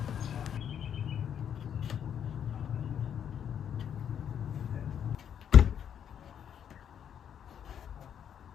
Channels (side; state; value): right; quieter; 8.8 dB